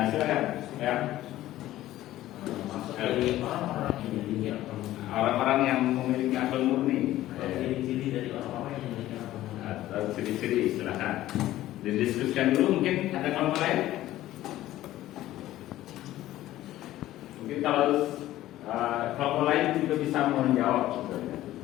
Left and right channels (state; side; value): quieter; right; 14.7 dB